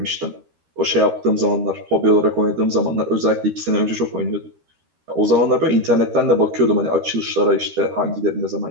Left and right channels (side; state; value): left; late; 13 ms